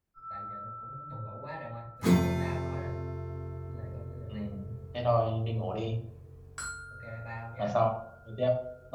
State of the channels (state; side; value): identical; both; correlation 1.00